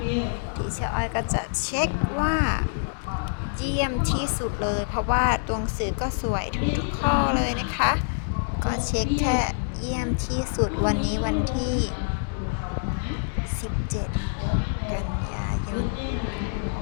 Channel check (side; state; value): right; silent; digital silence